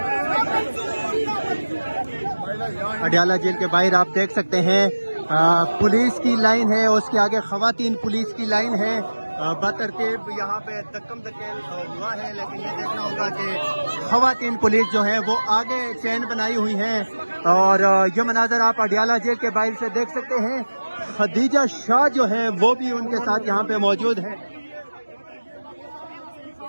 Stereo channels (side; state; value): both; inverted; correlation -1.00